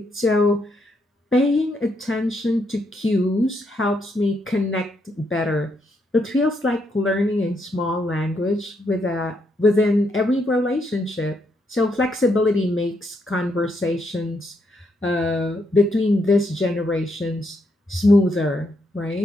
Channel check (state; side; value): normal; both; correlation 0.77